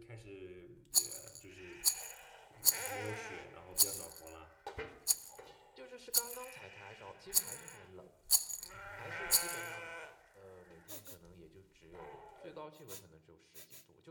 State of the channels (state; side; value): identical; both; correlation 1.00